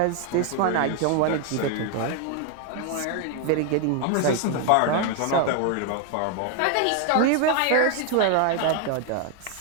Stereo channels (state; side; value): different; both; correlation 0.00